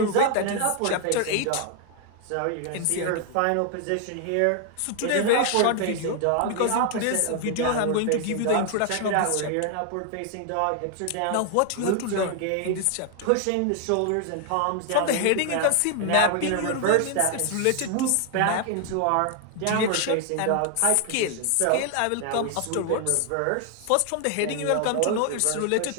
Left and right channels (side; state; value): both; different; correlation 0.00